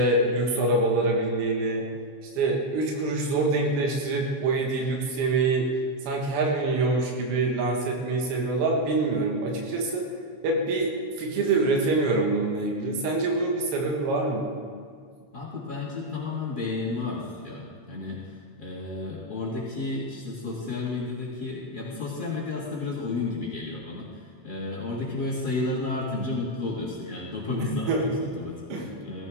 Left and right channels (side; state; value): left; late; 7.2 ms